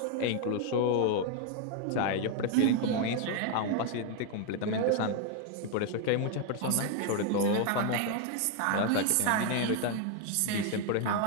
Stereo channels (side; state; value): both; different; correlation 0.01